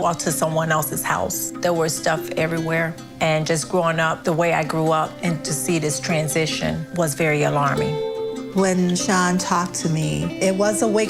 to someone else's house. There was stuff everywhere. And just growing up the way I grew up and to see this transition was very alarming. When Sean talked to me, it was a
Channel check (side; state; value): both; identical; correlation 1.00